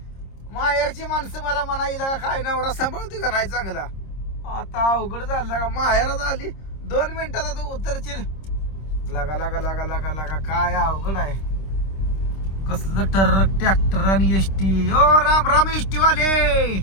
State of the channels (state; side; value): late; right; 26 ms